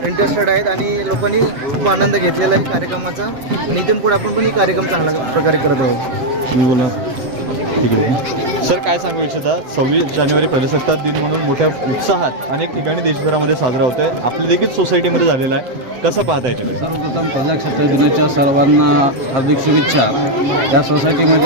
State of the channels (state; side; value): late; left; 7.5 ms